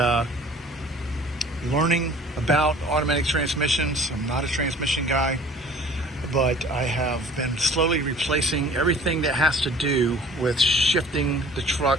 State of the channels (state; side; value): normal; both; correlation 0.48